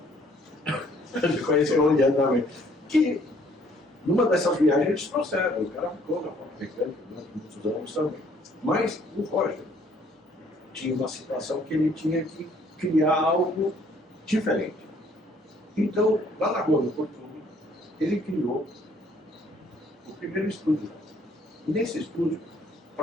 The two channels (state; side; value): normal; both; correlation 0.62